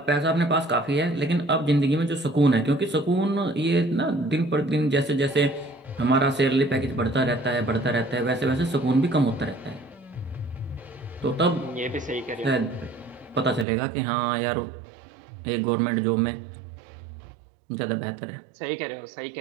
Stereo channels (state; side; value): drops out; left; at 13.7 s